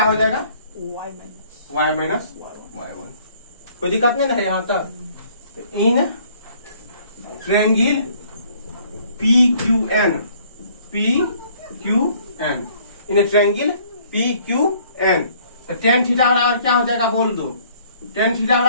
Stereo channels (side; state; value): both; inverted; correlation -0.60